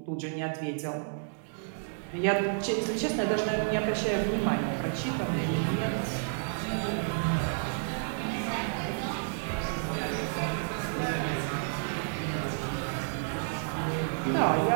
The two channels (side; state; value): left; silent; digital silence